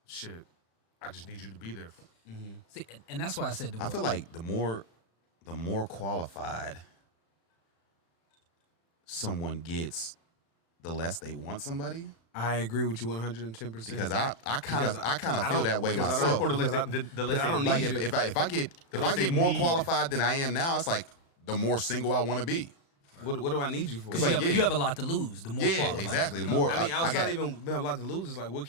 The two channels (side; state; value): right; late; 36 ms